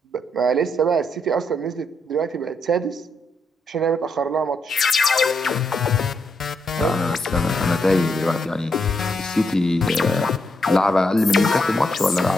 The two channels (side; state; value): both; normal; correlation 0.79